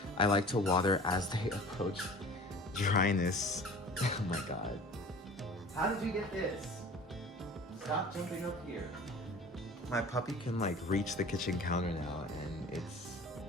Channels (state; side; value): normal; both; correlation 0.42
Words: I like to water as they approach dryness. Oh my God. How did you get this? Stop jumping up here. My puppy can like reach the kitchen counter now, and